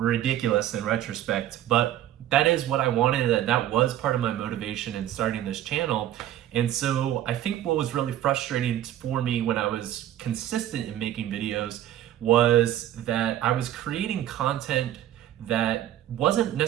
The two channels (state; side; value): quieter; left; 12.4 dB